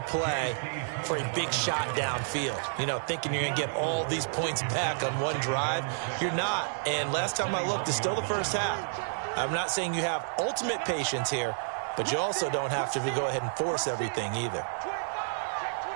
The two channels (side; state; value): left; silent; digital silence